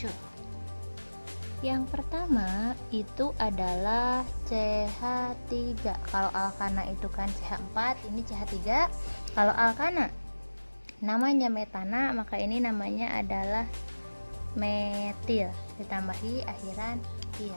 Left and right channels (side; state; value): both; inverted; correlation -1.00